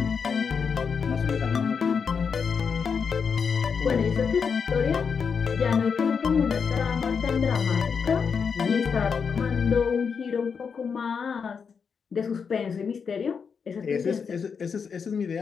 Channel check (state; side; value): quieter; right; 6.1 dB